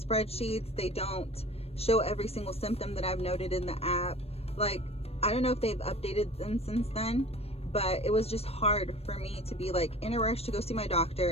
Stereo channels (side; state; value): right; late; 0.29 ms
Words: They don't show every single symptom that I've noted in the app. Like, I don't know if they've updated them since then, but it was just hard for me to be like in a rush to go see my